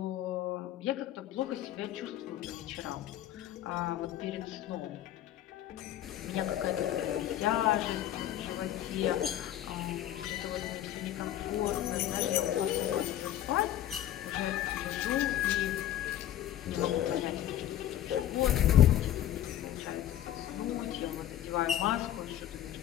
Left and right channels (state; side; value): quieter; right; 12.1 dB